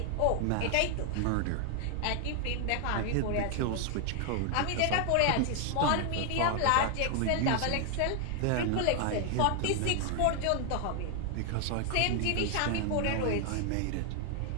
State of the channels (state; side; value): different; both; correlation 0.00